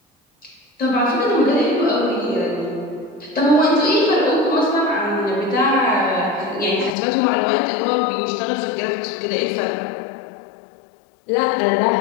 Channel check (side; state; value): right; drops out; at 7.0 s